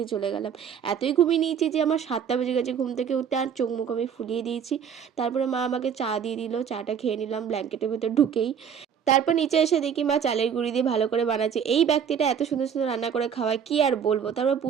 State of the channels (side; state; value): left; quieter; 7.7 dB